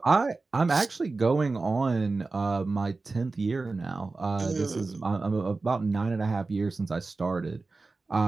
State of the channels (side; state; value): left; quieter; 3.7 dB